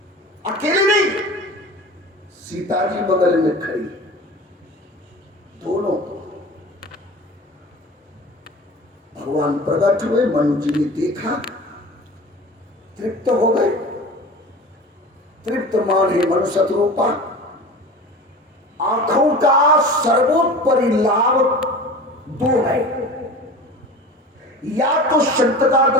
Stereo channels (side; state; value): both; normal; correlation 0.36